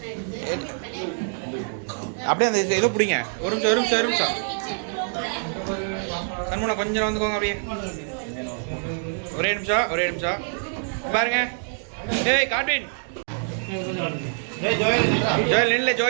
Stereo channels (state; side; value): silent; left; digital silence